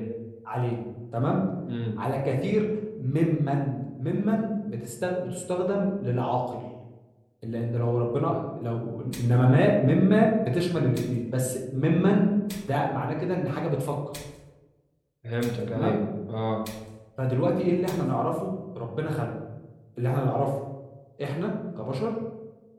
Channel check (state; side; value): identical; both; correlation 1.00